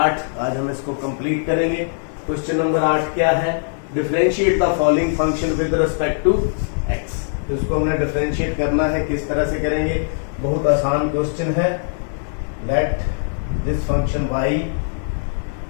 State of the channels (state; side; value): silent; right; digital silence